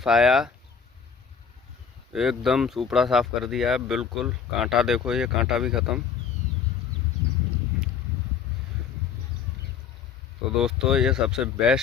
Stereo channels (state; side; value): quieter; right; 6.8 dB